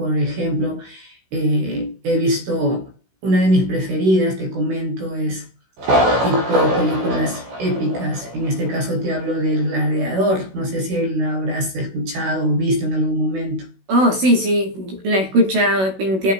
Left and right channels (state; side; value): late; left; 16 ms